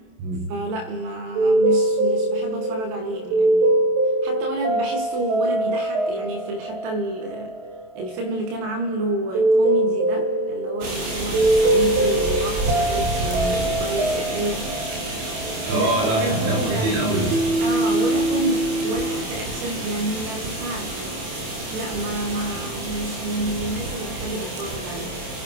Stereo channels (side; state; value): left; late; 27 ms